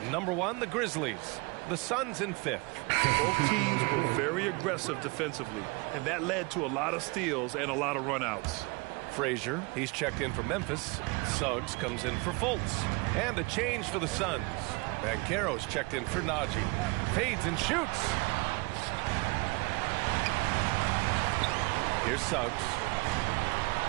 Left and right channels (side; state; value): left; quieter; 27.2 dB